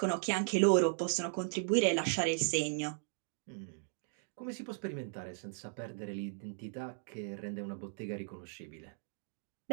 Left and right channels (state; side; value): silent; left; digital silence